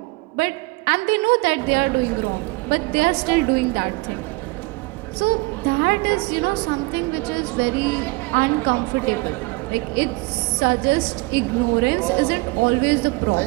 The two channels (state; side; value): quieter; left; 24.7 dB